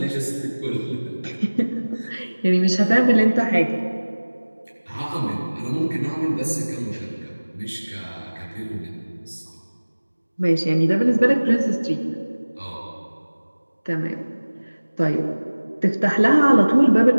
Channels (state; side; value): inverted; both; correlation -1.00